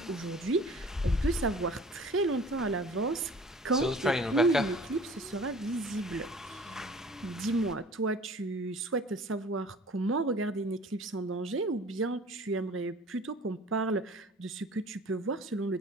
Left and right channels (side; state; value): both; normal; correlation 0.46